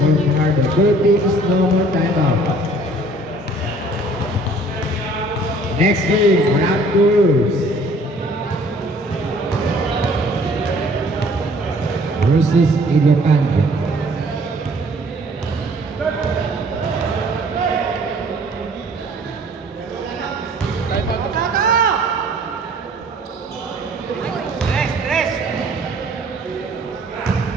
Fajardo. Both teams, no more timeout. Next game, Raptors versus Ilocano. Rest, rest.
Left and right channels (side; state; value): both; normal; correlation 0.55